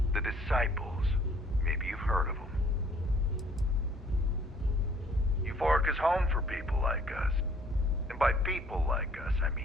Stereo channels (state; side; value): normal; both; correlation 0.59